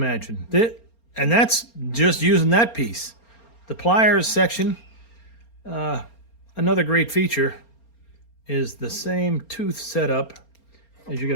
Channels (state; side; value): late; right; 4.3 ms